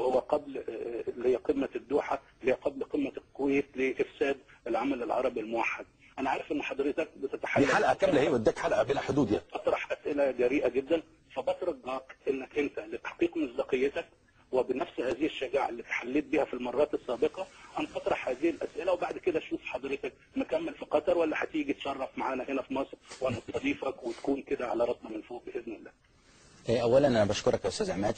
قبل اللي هي قمة الدوحة، اللي هي قبل قمة الكويت لإفساد العمل العربي الموحد؟ أنا عارف إن حضرتك بتتحدث دي حلقه كامله اهي، واداك حلقه بلا حدود يعني. أطرح أسئلة جريئة جدا، فبترجاك إنك أنت لتحقيق مصداقيتك وبنفس هذه الشجاعة اللي تحليت بها في المرات السابقة أن تطرح هذه الأسئلة، وبعد كده شوف حضرتك مكمل في قطر ولا هتيجي تشرف معانا هنا في مصر ونستضيفك وتكون كده على راسنا من فوق بإذن الله. اولا انا بشكرك يا استاذ عماد،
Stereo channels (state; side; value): identical; both; correlation 1.00